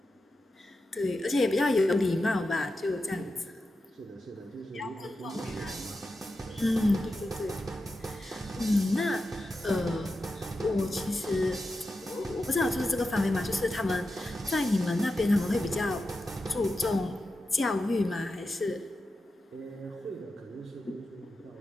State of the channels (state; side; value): normal; both; correlation 0.90